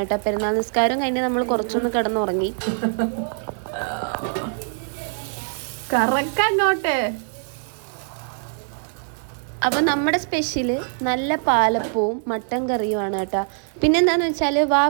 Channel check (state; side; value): silent; left; 58 dB below the other